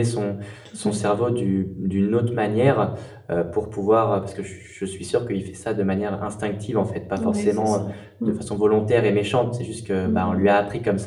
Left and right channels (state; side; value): identical; both; correlation 1.00